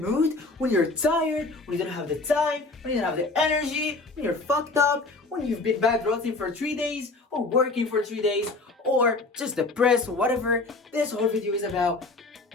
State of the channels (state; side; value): quieter; right; 3.4 dB